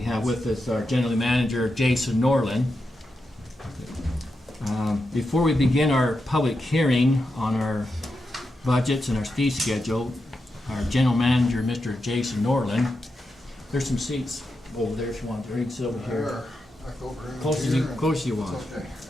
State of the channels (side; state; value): both; normal; correlation 0.87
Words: have with us our General Manager Jason Norland. Before we begin our public hearing on our budgets and our fee schedule, our General Manager, Mr. Jason Norland, there's some seats over there if you want to. You can sit over here. Close as you want. Okay.